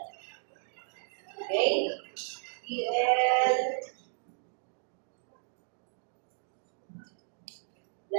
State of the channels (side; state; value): left; silent; digital silence